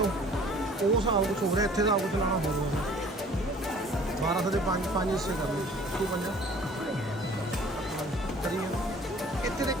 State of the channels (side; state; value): both; normal; correlation 0.51